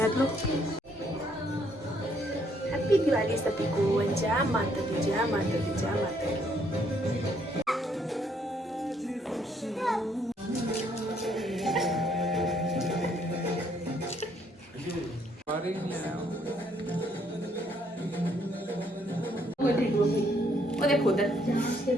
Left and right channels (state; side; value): normal; both; correlation 0.69